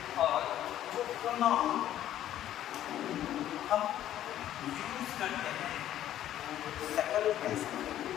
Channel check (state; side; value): quieter; right; 12.0 dB